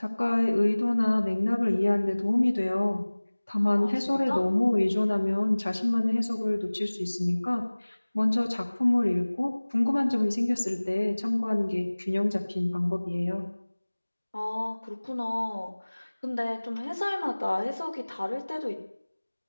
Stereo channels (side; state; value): both; inverted; correlation -1.00